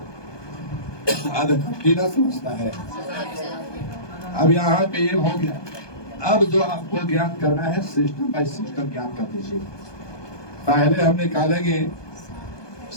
आधा कट्टी ना समझता है। अब यहाँ पे ये हो गया। अब जो आपको ज्ञात करना है सिस्टम बाय सिस्टम ज्ञात कर दीजिए। पहले हम निकालेंगे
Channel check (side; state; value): right; late; 1.2 ms